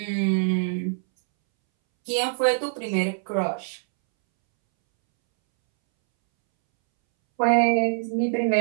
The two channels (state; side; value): silent; left; 63 dB below the other